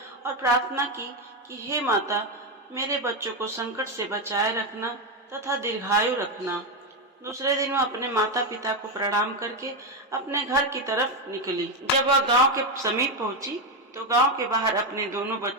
और प्रार्थना की कि हे माता, मेरे बच्चों को संकट से बचाए रखना तथा दीर्घायु रखना। दूसरे दिन वह अपने माता पिता को प्रणाम करके अपने घर की तरफ निकली। जब वह गांव के समीप पहुंची तो गांव के बाहर अपने दोनों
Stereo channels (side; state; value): both; normal; correlation 0.08